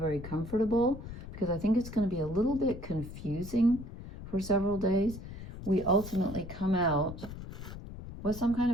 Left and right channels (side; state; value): left; noise; rumble, 11 dB below the sound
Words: comfortable, because I think it's going to be a little bit confusing for several days, we ultimately come out with some kind